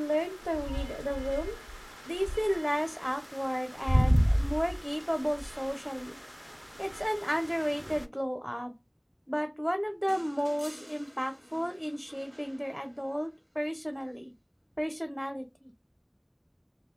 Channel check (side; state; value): both; identical; correlation 1.00